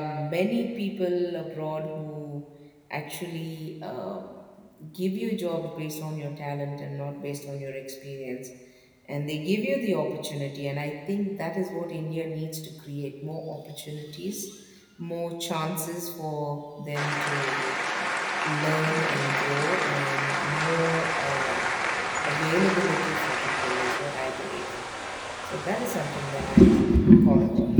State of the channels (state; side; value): identical; both; correlation 1.00